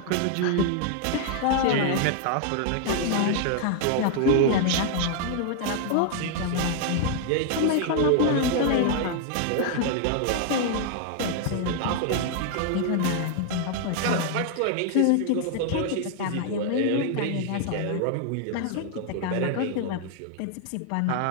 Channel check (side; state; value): both; different; correlation 0.00